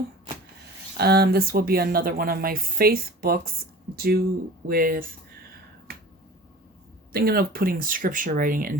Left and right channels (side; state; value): both; normal; correlation 0.41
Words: This will be another one of my faith books due with thinking of putting scripture writing in